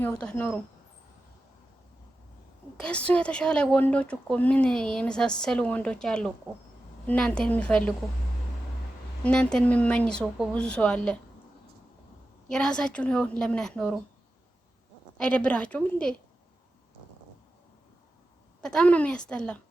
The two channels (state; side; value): normal; both; correlation 0.92